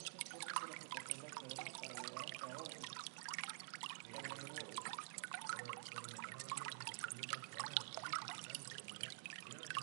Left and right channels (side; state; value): left; silent; digital silence